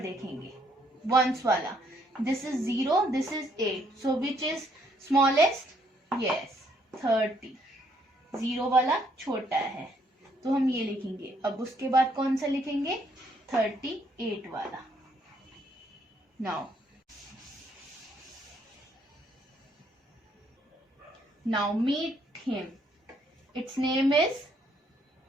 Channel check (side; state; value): both; normal; correlation 0.69